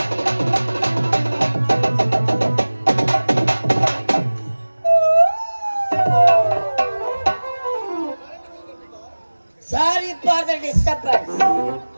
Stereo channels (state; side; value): inverted; both; correlation -1.00